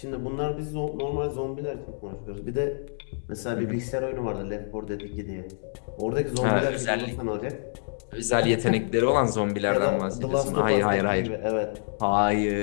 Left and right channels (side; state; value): right; silent; digital silence